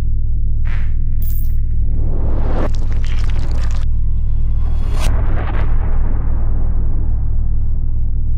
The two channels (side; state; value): both; identical; correlation 1.00